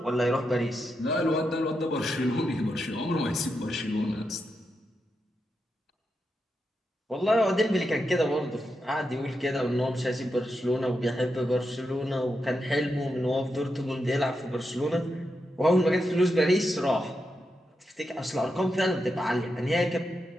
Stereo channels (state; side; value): normal; both; correlation 0.86